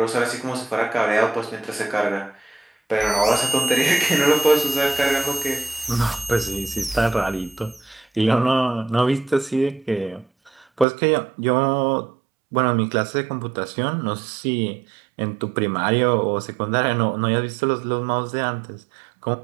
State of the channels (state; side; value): drops out; left; at 10.9 s